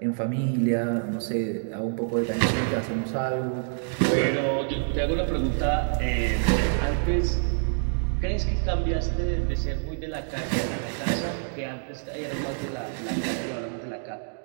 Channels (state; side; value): silent; left; digital silence